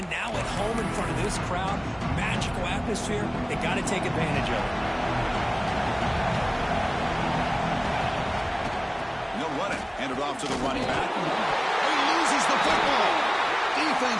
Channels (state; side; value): identical; both; correlation 1.00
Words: now at home in front of this crowd. Magical atmosphere. They got to take advantage of it. No running. Handed off to the running back. He loses the football.